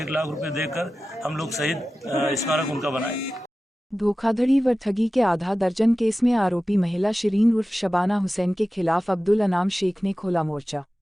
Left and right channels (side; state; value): both; normal; correlation 0.95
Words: 1 लाख रुपए देकर हम लोग शहीद स्मारक उनका बनाएंगे। धोखाधड़ी व ठगी के आधा दर्जन केस में आरोपी महिला शिरीन उर्फ शबाना हुसैन के खिलाफ अब्दुल अनाम शेख ने खोला मोर्चा।